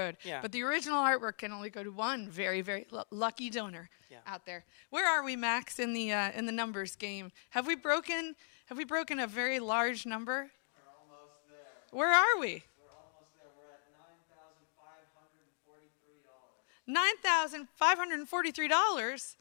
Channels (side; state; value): right; silent; digital silence